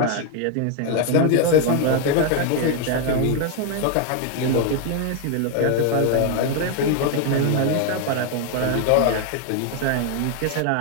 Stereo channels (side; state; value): both; different; correlation 0.01